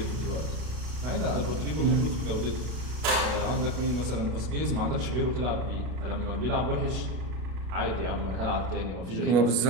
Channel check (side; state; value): left; late; 32 ms